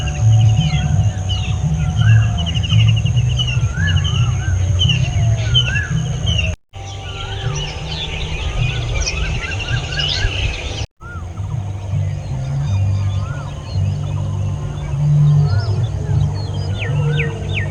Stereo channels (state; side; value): identical; both; correlation 1.00